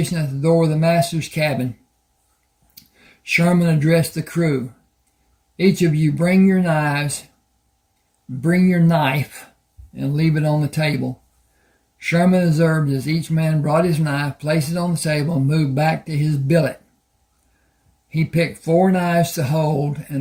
at the door of the master's cabin, Sherman addressed the crew. Each of you bring your knives, bring your knife, and leave it on the table. Sherman observed as each man brought his knife, placed it on the table, and moved back to his billet. He picked 4 knives to hold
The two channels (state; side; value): identical; both; correlation 1.00